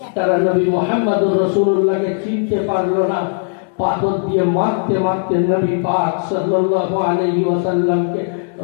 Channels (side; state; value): right; silent; digital silence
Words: তারা নবী মুহাম্মদুর রাসূলুল্লাহকে চিনতে পারলো না, পাথর দিয়ে মারতে মারতে নবী পাক সাল্লাল্লাহু আলাইহি ওয়াসাল্লামকে